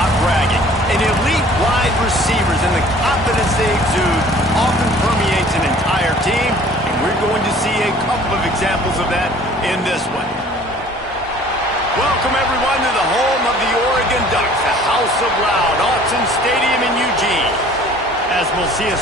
bragging. An elite wide receivers and the confidence they exude often permeates an entire team, and we're going to see a couple of examples of that in this one. Welcome, everyone, to the home of the Oregon Ducks, the House of Loud, Autzen Stadium in Eugene. As we'll see a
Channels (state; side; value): normal; both; correlation 0.51